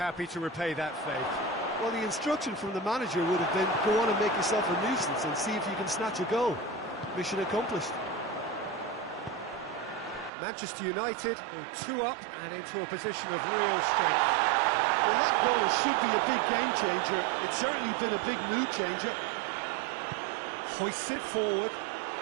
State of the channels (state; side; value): drops out; left; at 10.3 s